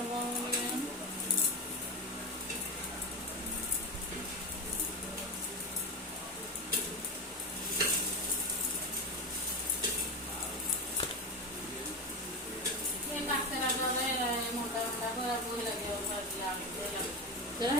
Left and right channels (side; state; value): both; normal; correlation 0.20